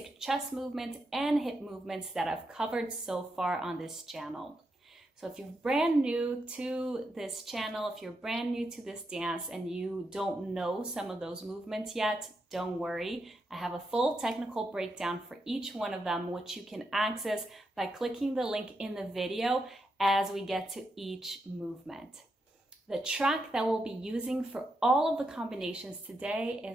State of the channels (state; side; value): normal; both; correlation 0.83